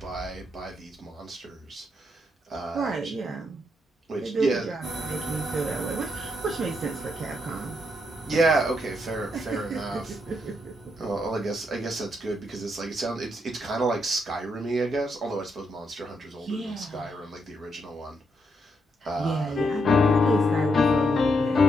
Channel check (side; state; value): both; normal; correlation 0.78